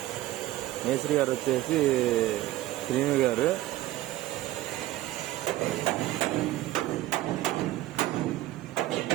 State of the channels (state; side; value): quieter; left; 15.7 dB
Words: మేస్త్రి గారు వచ్చేసి శ్రీను గారు.